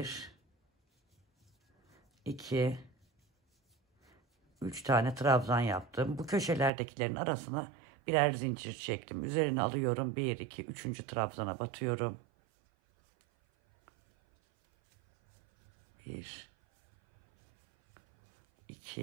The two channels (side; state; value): left; drops out; at 6.7 s